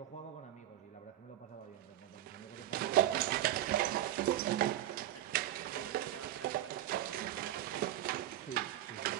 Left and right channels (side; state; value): left; quieter; 13.3 dB